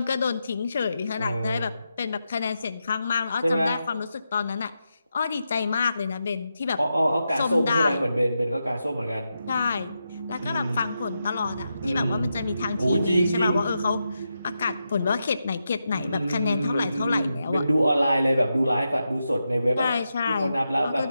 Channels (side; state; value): both; inverted; correlation -0.87